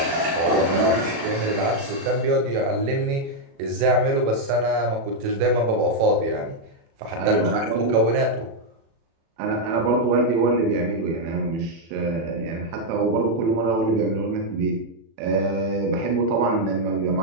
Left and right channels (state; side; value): late; left; 36 ms